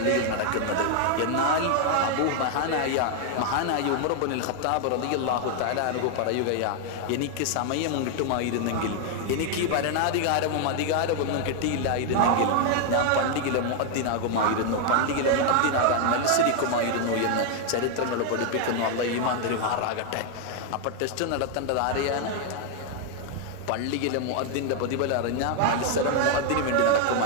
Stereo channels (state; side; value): different; both; correlation 0.00